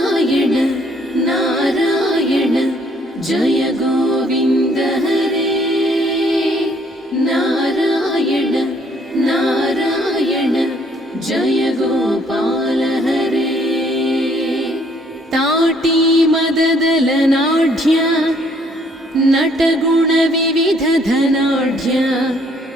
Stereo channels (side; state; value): both; normal; correlation 0.64